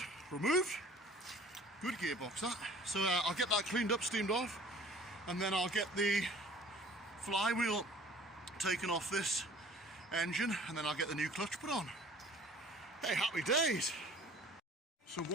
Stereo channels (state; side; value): normal; both; correlation 0.49